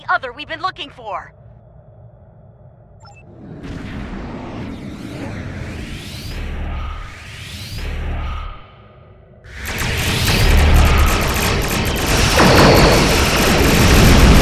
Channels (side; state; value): both; identical; correlation 1.00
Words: other we've been looking for.